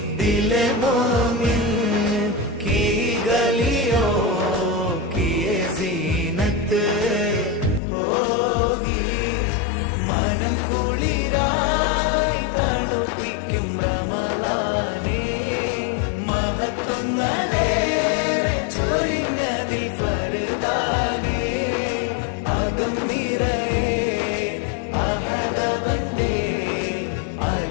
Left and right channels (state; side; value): drops out; right; at 7.8 s